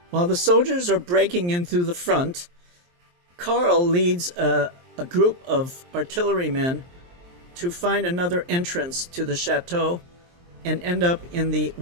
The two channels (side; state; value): left; late; 23 ms